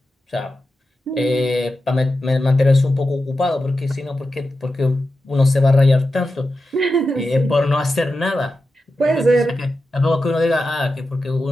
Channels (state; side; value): normal; both; correlation 0.91